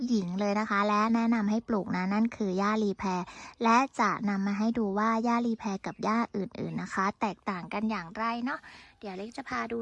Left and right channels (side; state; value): both; identical; correlation 1.00